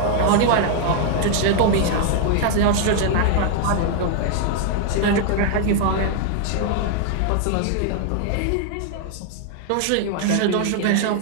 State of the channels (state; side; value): different; both; correlation 0.00